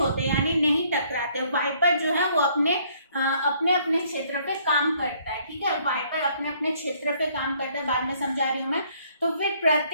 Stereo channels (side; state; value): both; inverted; correlation -0.64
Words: यानी नहीं टकराते। वाइपर जो है वो अपने अपने क्षेत्र पे काम करता है। ठीक है, वाइपर अपने अपने क्षेत्र पे काम करता है, बाद में समझा रही हूँ मैं। तो फिर